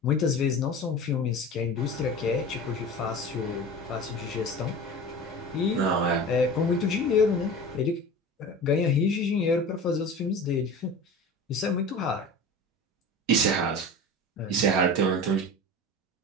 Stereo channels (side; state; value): both; normal; correlation 0.34